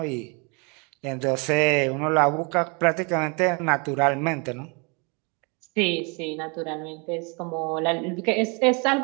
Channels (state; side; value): quieter; left; 32.2 dB